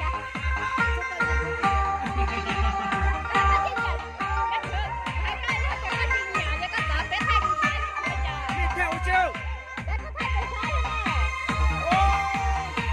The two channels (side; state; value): both; identical; correlation 1.00